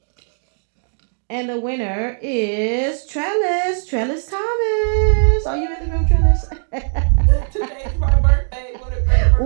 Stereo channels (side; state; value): left; silent; digital silence